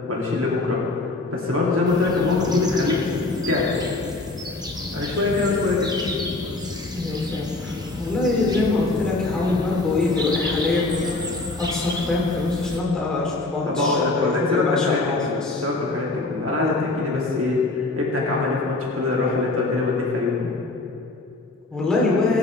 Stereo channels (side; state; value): right; quieter; 3.1 dB